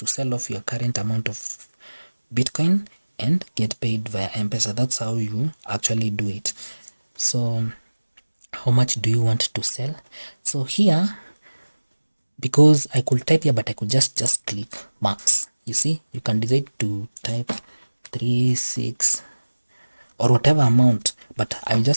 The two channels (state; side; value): inverted; both; correlation -1.00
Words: sell off your current amount of Bitcoin and get paid via M-Pesa. That's how you actually do it. So how much do you want to sell? So here, because I could type here, but I could just click max. You see, you can decide to type 36 or whatever amount, but I'll